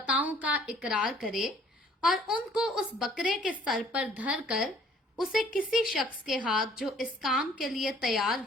का इकरार करे और उनको उस बकरे के सर पर धर कर उसे किसी शख्स के हाथ जो इस काम के लिए तैयार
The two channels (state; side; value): normal; both; correlation 0.58